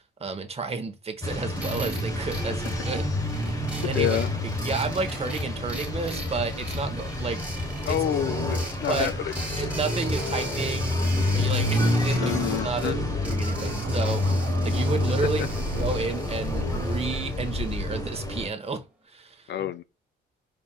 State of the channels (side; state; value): both; normal; correlation 0.55